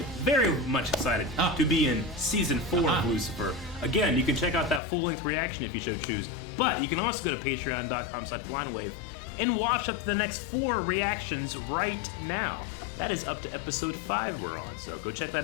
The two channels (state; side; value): drops out; right; at 4.8 s